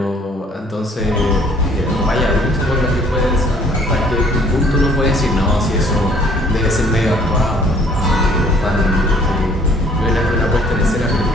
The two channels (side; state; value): both; normal; correlation 0.58